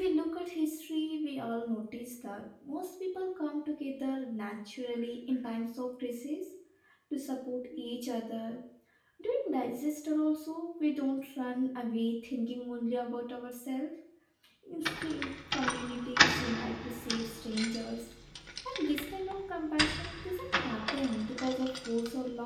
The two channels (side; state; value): both; identical; correlation 1.00